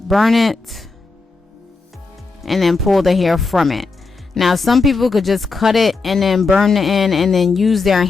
burn it and then pull the hair from it. Now some people could just cut it and then burn the end and then use their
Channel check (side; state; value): right; quieter; 4.0 dB